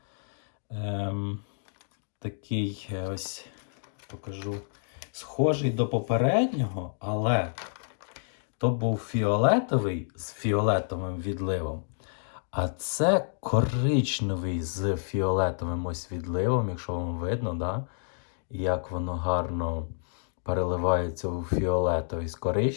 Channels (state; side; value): silent; right; digital silence